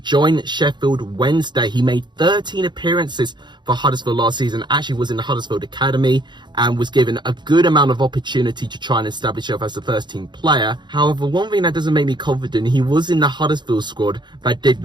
join Sheffield Wednesday. He made 13 appearances for Huddersfield last season, actually was in the Huddersfield Academy and was given a good amount of opportunity to try and establish himself as a first team player. However, one thing that doesn't make me confident, he was in the Huddersfield squad that did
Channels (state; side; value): late; left; 0.22 ms